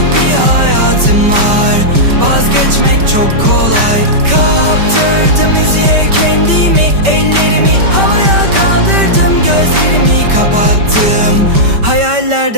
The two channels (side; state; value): left; late; 5.2 ms